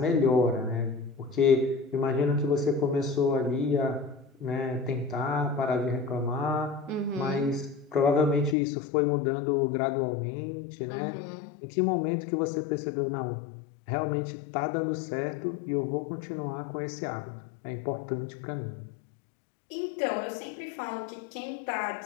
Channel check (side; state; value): right; drops out; at 8.6 s